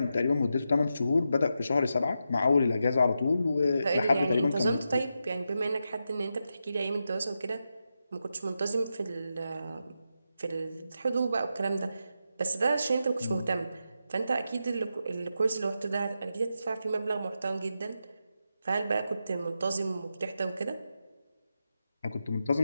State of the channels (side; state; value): both; inverted; correlation -0.87